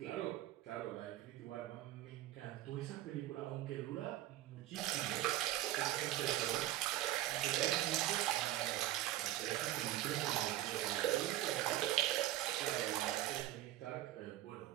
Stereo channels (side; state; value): left; quieter; 14.5 dB